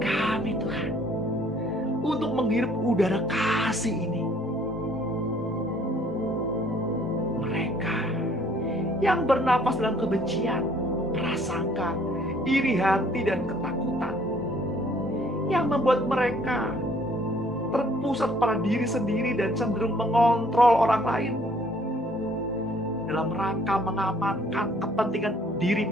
Tuhan untuk menghirup udara kasih ini. Mereka yang bernapas dalam kebencian, prasangka, iri hati dan ketakutan, yang membuat mereka terpusat pada diri sendiri dan cenderung mengontrol orang lain dalam rangka mengamankan kepentingan diri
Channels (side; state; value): both; normal; correlation 0.60